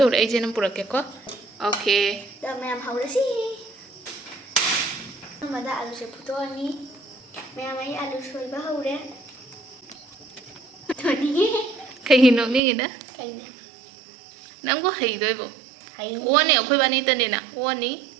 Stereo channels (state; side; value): drops out; left; at 12.6 s